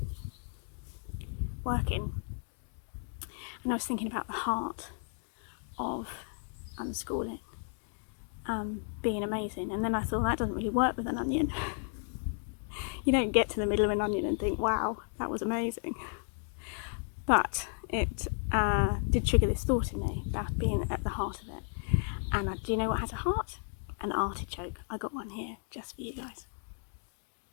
working. And I was thinking about the heart of unschooling being amazing, and then I thought that doesn't really work with an onion. You don't get to the middle of an onion and think, wow, that was amazing. But it did trigger this thought in me about being at the heart of it. And do you know what has a heart? An artichoke. I got one here just for you guys.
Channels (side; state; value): right; silent; 55 dB below the other